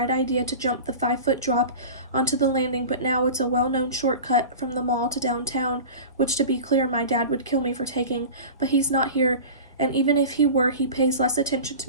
idea to jump the 5-foot drop onto the landing, but now it's a well-known shortcut from the mall to downtown, which, to be clear, my dad would kill me for taking, but he's not here, and even if he were, he pays less attention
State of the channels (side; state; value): both; inverted; correlation -0.34